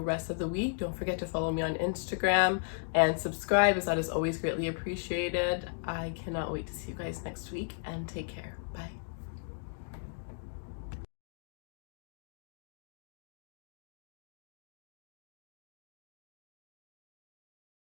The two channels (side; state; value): right; silent; digital silence